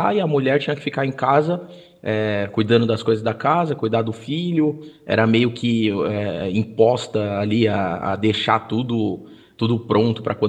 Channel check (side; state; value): both; identical; correlation 1.00